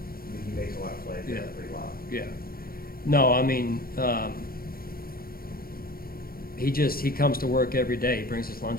he makes a lot of plays. Yeah. Pretty loud. Yeah. No, I mean, he comes to work every day. He brings his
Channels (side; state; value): right; late; 0.43 ms